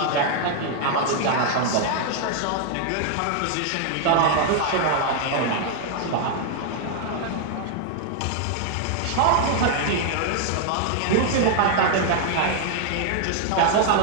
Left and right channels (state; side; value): different; both; correlation 0.00